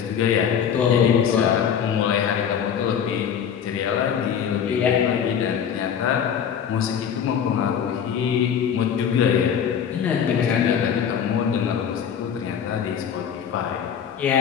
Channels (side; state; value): right; quieter; 8.1 dB